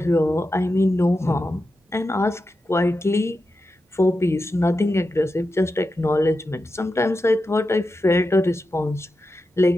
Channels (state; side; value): normal; both; correlation 0.90